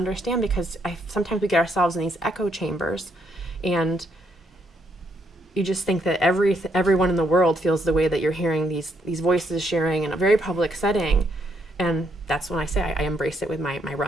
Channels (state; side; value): normal; both; correlation 0.75